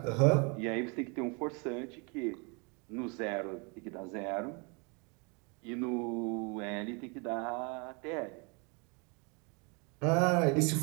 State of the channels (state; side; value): quieter; left; 32.5 dB